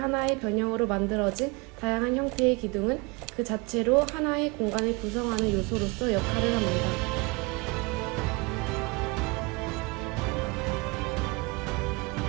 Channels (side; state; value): left; quieter; 27.8 dB